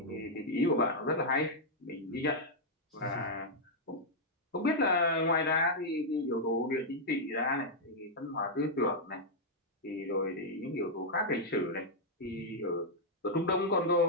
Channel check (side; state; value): both; normal; correlation -0.05